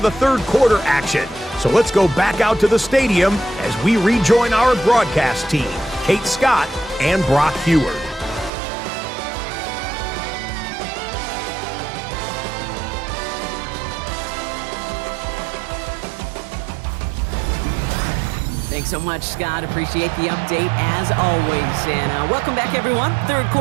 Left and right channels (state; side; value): drops out; left; at 8.5 s